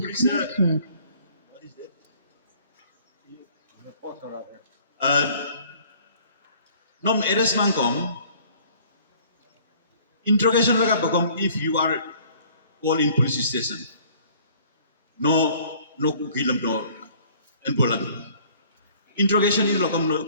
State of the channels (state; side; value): inverted; both; correlation -0.55